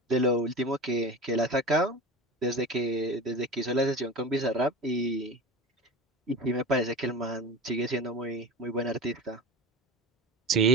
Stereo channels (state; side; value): normal; both; correlation 0.31